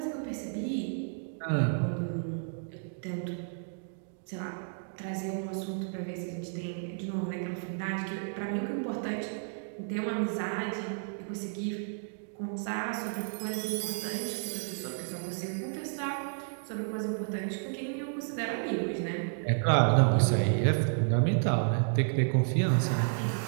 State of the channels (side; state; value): left; silent; digital silence